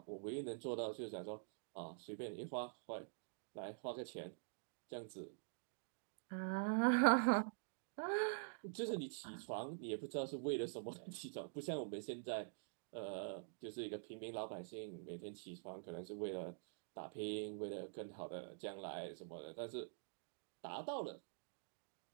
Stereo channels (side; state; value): left; silent; digital silence